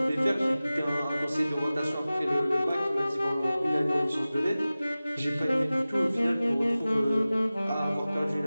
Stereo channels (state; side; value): inverted; both; correlation -0.97